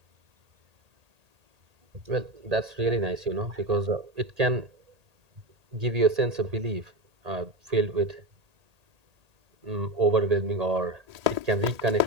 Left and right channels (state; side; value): late; left; 1.8 ms